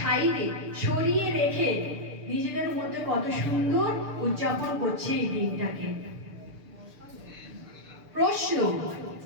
সরিয়ে রেখে নিজেদের মধ্যে কত সুন্দর উদযাপন করছে এই দিনটাকে। প্রশ্ন,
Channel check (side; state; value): left; late; 6.7 ms